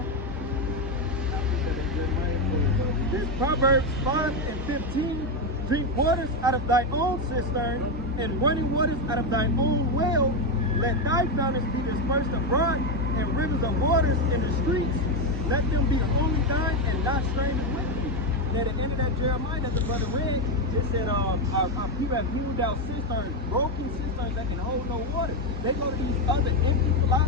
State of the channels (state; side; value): normal; both; correlation 0.07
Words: This Proverbs 5:15. Drink waters out of thy own cistern, and running waters out of thine own well. Let thy fountains be dispersed abroad, and rivers of waters in the streets. Let them be only thine, and not strangers with thee. And at the end of that Jeremiah that the brother read, it said, our people have hewed out cisterns, broken cisterns that can hold no water. They go to these other empty